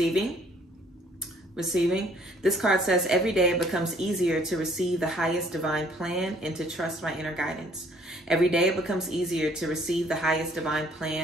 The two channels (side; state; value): both; normal; correlation 0.61